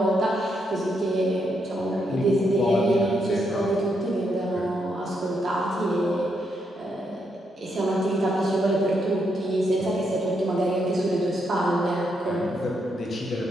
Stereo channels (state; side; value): normal; both; correlation 0.79